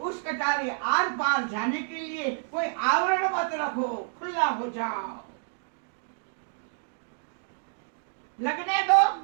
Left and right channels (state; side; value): silent; left; digital silence